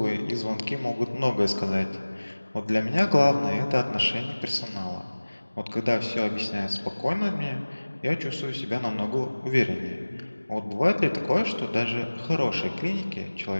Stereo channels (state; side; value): inverted; both; correlation -1.00